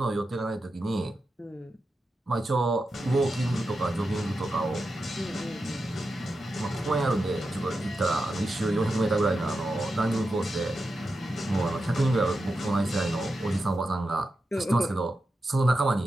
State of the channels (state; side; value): normal; both; correlation 0.89